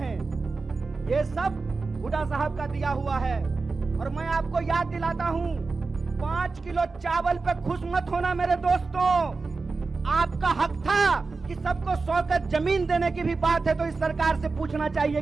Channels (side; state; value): left; quieter; 4.1 dB